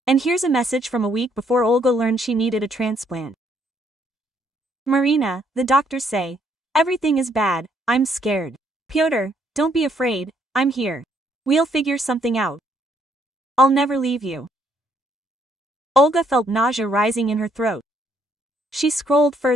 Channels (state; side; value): normal; both; correlation 0.69